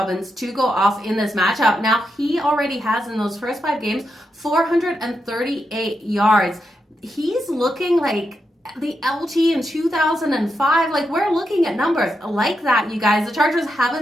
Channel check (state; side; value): normal; both; correlation 0.85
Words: to go off in this matchup. Now, he already has in those first 5 games 438 yards. He's looking like the LT in 2005. Like, we're looking at numbers like that, you guys. The Chargers